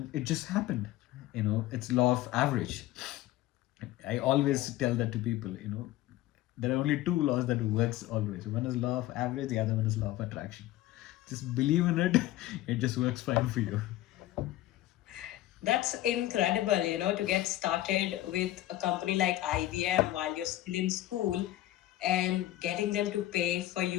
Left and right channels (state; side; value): quieter; right; 15.1 dB